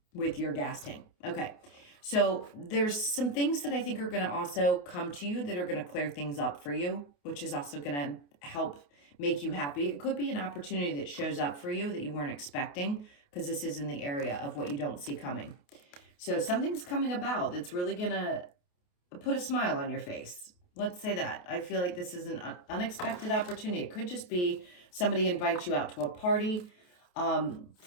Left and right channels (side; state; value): right; late; 28 ms